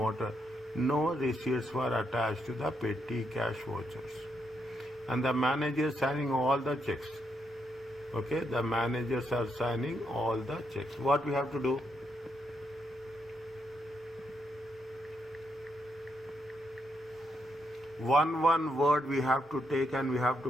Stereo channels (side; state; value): both; normal; correlation 0.79